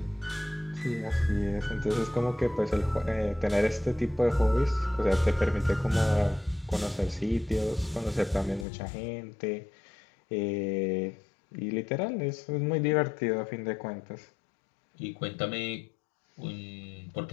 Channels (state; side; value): drops out; right; at 8.7 s